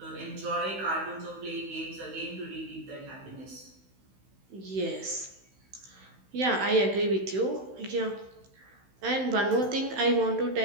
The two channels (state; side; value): late; left; 16 ms